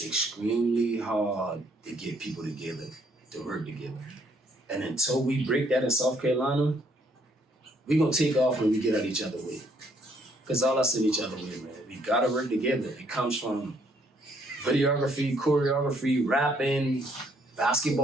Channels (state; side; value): normal; both; correlation 0.67